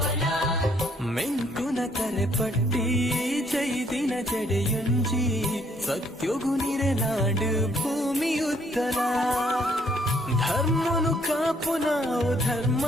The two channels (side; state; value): both; normal; correlation 0.66